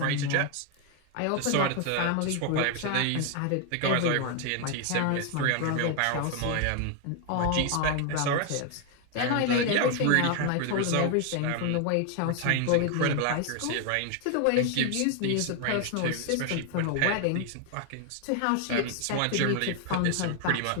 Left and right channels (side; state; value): both; different; correlation 0.01